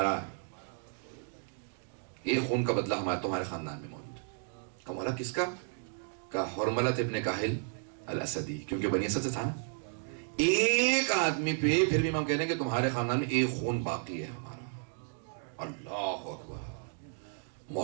ایک خون کا بدلہ ہمارا تمہارے خاندان میں موجود ہے. کہ مولا کس کا؟ کہ حرملہ ابن کاہل الاسدی، کیونکہ بنی اسد سے تھا نا. ایک آدمی پہ پھر بھی ہم کہہ رہے ہیں کہ تمہارے خاندان میں ایک خون باقی ہے ہمارا. اللہ اکبر،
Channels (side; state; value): left; silent; 56 dB below the other